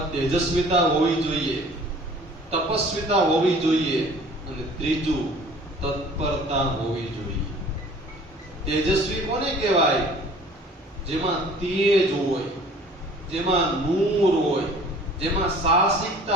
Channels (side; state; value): both; normal; correlation 0.50